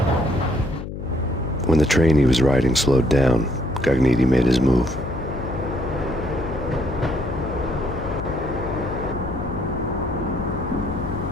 When the train he was riding slowed down, Gognitti made his move.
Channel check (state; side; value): noise; left; hum, 8 dB below the sound